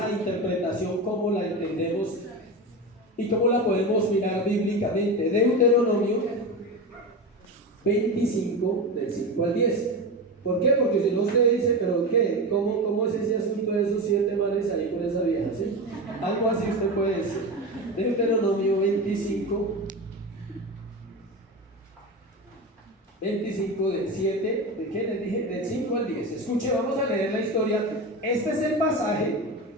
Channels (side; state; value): both; normal; correlation 0.22